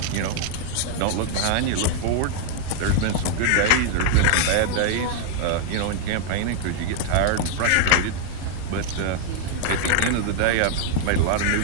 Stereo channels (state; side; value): different; both; correlation 0.00